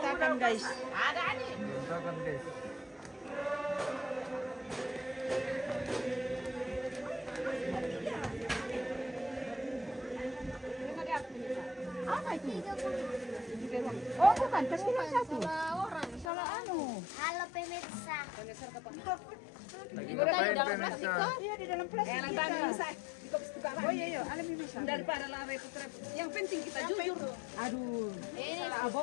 guys. Ada ani. Berantakan, guys. Apa itu? Oh bukan, pasti yang satu. Salah anu. Halo pemirsa. Lagi ngapain pemirsa? Iya di dalam plastik. Oh iya iya, alam bisa. Daripada lah repot-repot. Yang penting kita jujur. Aduh, Ini salah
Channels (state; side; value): drops out; right; at 16.3 s